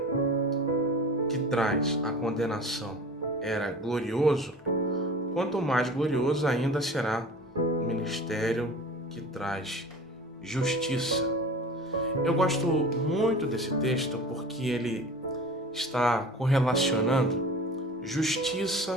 que traz a condenação era glorioso, quanto mais glorioso ainda será o ministério que traz justiça. Eu gosto muito desse texto porque ele está correlacionando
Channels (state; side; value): normal; both; correlation 0.38